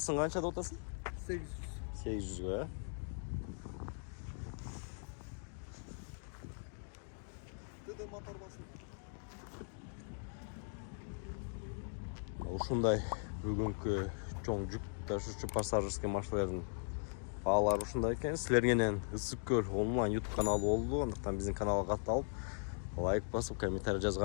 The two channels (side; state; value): right; silent; 52 dB below the other